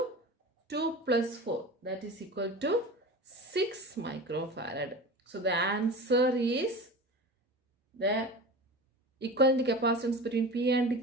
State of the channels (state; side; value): normal; both; correlation 0.32